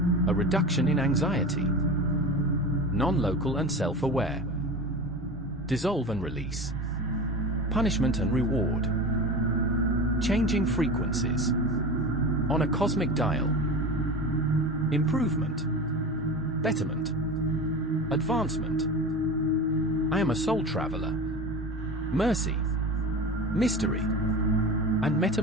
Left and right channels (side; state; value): both; normal; correlation 0.29